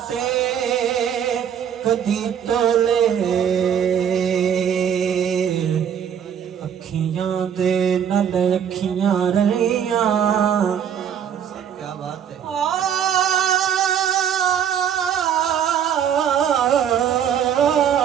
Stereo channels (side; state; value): left; quieter; 8.6 dB